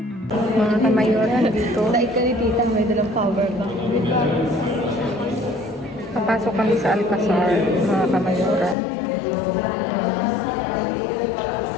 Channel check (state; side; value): drops out; right; at 8.8 s